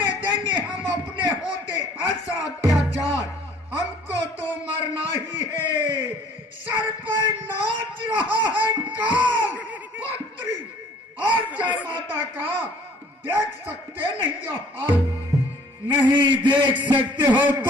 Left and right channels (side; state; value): both; normal; correlation 0.55